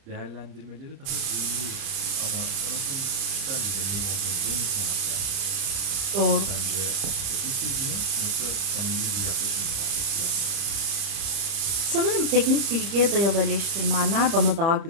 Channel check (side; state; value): left; late; 30 ms